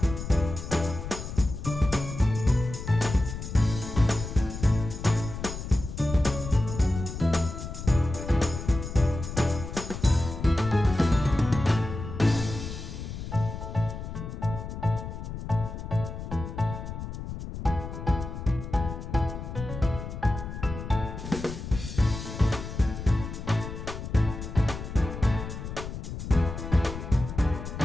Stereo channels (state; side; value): noise; left; rumble, 8 dB below the sound